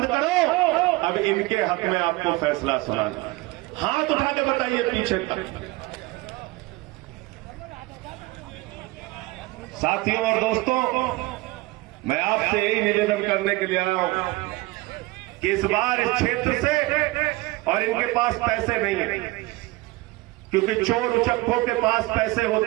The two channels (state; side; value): quieter; left; 21.4 dB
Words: करो, अब इनके हक में आपको फैसला सुनाना। हाथ उठा के बताइए पीछे तक। साथियों और दोस्तों, मैं आपसे यही निवेदन करने के लिए आया हूं कि इस बार इस क्षेत्र से, और इनके पास पैसे नहीं है क्योंकि चोर उचक्कों के पास पैसे